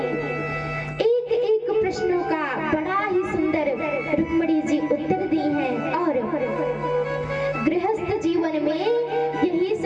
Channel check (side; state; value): both; identical; correlation 1.00